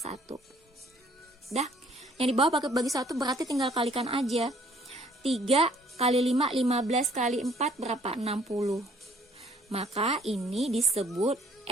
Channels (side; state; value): both; normal; correlation 0.60